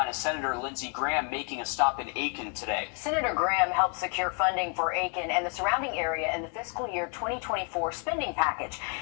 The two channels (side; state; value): right; quieter; 36.3 dB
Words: Senator Lindsey Graham making a stop in Aiken today. Senator Graham helped secure funding for Aiken and the surrounding area in the fiscal year 2024 spending package,